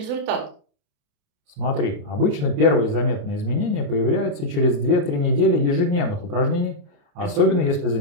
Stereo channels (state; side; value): late; left; 28 ms